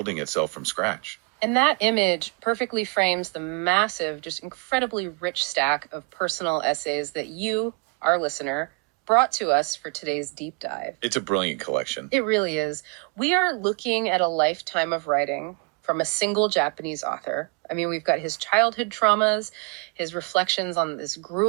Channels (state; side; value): quieter; left; 29.5 dB